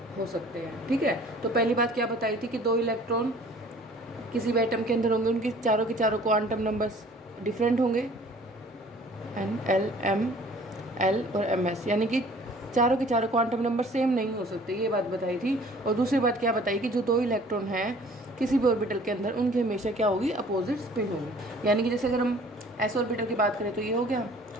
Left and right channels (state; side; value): normal; both; correlation 0.52